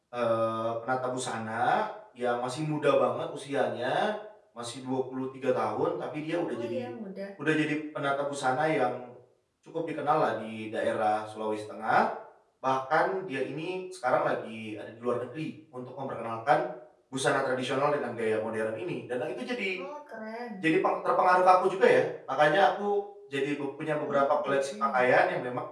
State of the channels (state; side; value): identical; both; correlation 1.00